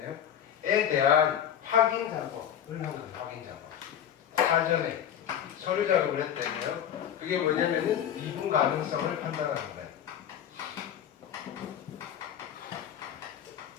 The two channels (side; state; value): right; quieter; 9.7 dB